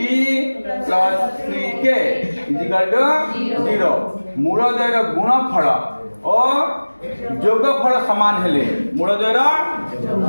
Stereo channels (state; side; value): inverted; both; correlation -1.00